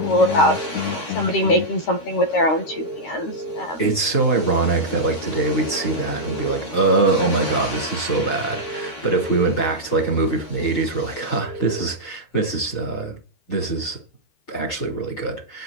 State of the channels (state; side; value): late; right; 13 ms